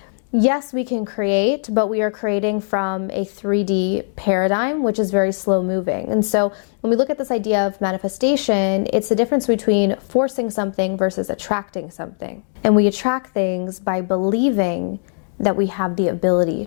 yes, we can create, but we are creating from a 3D paradigm, which is very slow moving. And so when we look at this idea of manifestation, it's the difference between forcing something versus attracting something. And we attract things by believing that we have the ability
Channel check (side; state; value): right; silent; digital silence